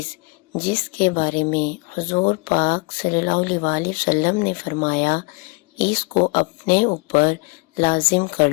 جس کے بارے میں حضور پاک صلی اللہ علیہ وسلم نے فرمایا، اس کو اپنے اوپر لازم کر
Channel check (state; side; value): quieter; right; 27.8 dB